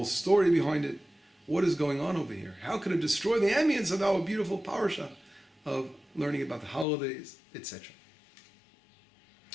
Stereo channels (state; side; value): drops out; right; at 6.9 s